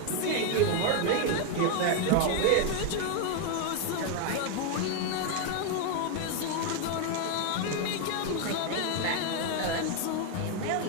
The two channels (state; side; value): different; both; correlation 0.01